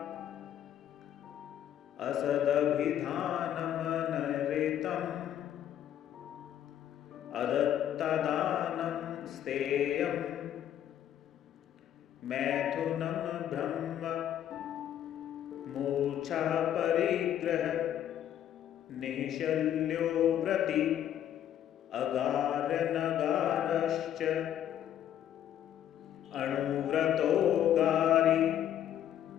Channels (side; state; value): right; quieter; 10.7 dB